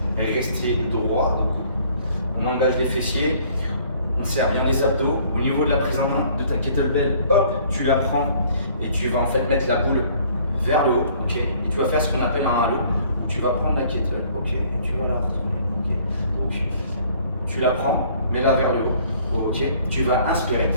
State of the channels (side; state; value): both; inverted; correlation -0.57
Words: rester droit. Donc on engage les fessiers. On serre bien les abdos. Au niveau de la prise en main de ta kettlebell, hop, tu la prends et tu vas en fait mettre la boule vers le haut, ok. Et tu vas faire ce qu'on appelle un halo. Tu vas prendre la kettle, ok, et tu vas la retourner, ok. Donc tu la prends, mets-la vers le haut, ok. Tu vas inspirer,